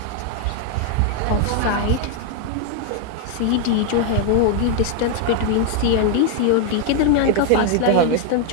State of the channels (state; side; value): different; both; correlation 0.00